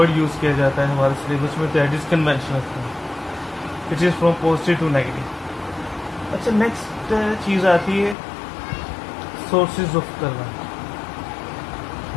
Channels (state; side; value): drops out; right; at 8.2 s